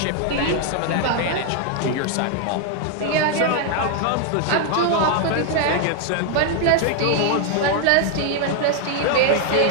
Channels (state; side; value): different; both; correlation 0.01